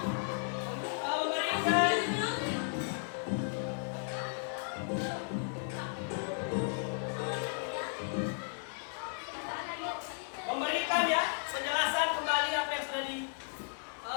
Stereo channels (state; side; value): silent; right; 55 dB below the other